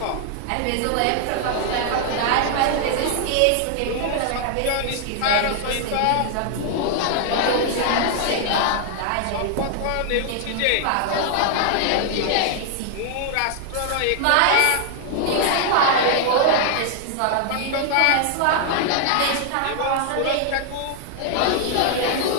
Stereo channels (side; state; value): both; different; correlation 0.00